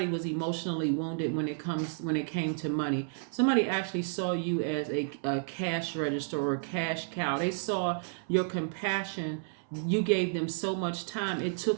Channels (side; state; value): left; silent; 57 dB below the other